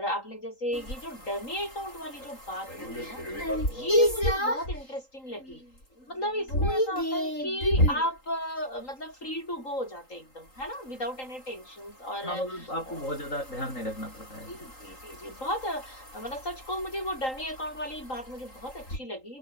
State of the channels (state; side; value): late; right; 3.8 ms